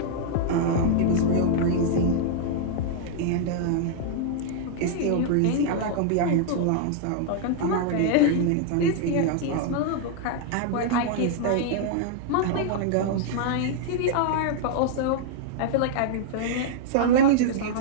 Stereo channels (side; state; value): both; different; correlation -0.01